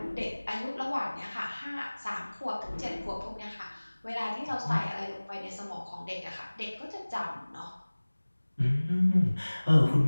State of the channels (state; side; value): inverted; both; correlation -1.00